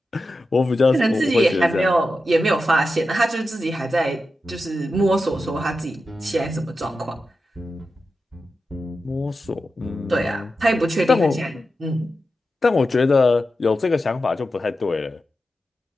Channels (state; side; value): normal; both; correlation 0.91